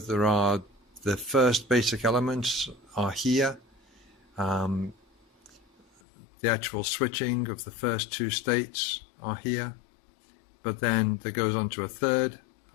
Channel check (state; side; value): drops out; right; at 6.0 s